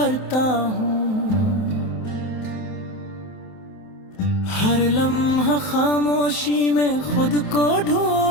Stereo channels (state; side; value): late; right; 27 ms